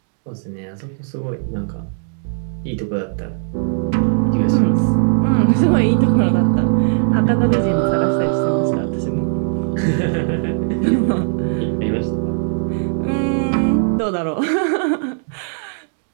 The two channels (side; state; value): left; silent; digital silence